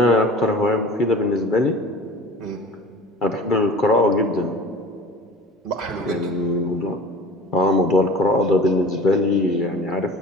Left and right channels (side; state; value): both; normal; correlation 0.41